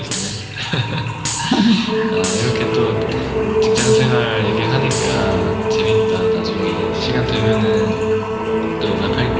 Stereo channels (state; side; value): identical; both; correlation 1.00